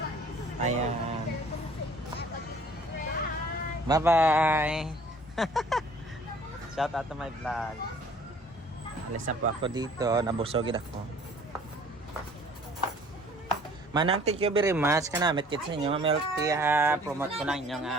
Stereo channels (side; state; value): both; normal; correlation 0.53